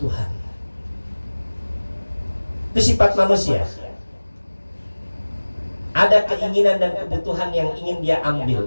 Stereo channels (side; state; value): both; inverted; correlation -1.00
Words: Itu sifat manusia. Ada keinginan dan kebutuhan yang ingin dia ambil,